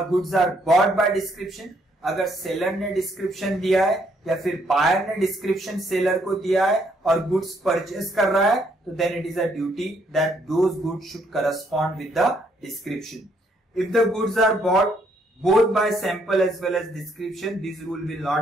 goods are bought by description. अगर seller ने description दिया है या फिर buyer ने description seller को दिया है और गुड्स परचेस कर रहा है तो then it is a duty that those goods should correspond with the description. If the goods are bought both by sample as well as description, this rule will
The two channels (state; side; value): normal; both; correlation 0.70